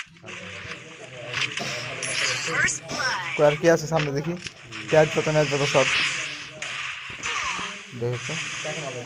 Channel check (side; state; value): both; identical; correlation 1.00